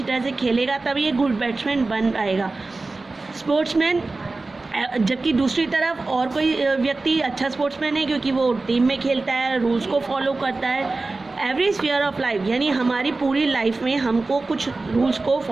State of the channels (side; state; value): left; quieter; 3.4 dB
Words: तरह से खेलेगा, तभी एक गुड बैट्समैन बन पाएगा, स्पोर्ट्समैन। जबकि दूसरी तरफ और कोई व्यक्ति अच्छा स्पोर्ट्समैन है, क्योंकि वो टीम में खेलता है, रूल्स को फॉलो करता है। एवरी स्फीयर ऑफ लाइफ, यानी हमारी पूरी लाइफ में हमको कुछ रूल्स को